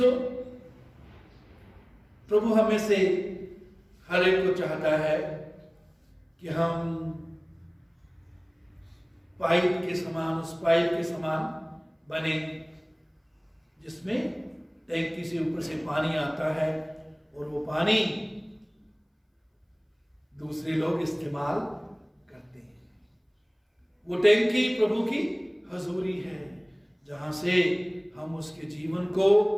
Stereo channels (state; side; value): identical; both; correlation 1.00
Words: प्रभु हमें से हर एक को चाहता है कि हम पाइप के समान, उस पाइप के समान बने जिसमें टैंकी से ऊपर से पानी आता है और वो पानी दूसरे लोग इस्तेमाल करते हैं। वो टैंकी प्रभु की हजूरी है, जहां से हम उसके जीवन को